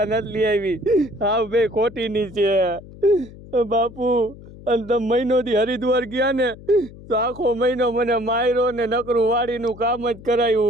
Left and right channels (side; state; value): left; noise; hum, 18 dB below the sound